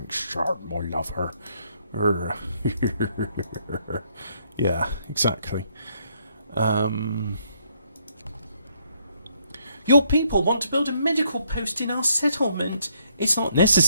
my lover. Yeah, exactly. Your people want to build a medical post in our settlement. It's not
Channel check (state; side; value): inverted; both; correlation -0.71